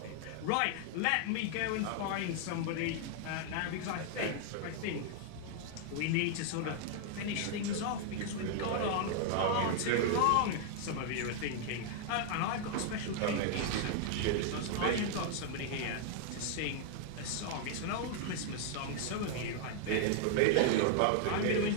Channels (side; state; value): both; different; correlation 0.00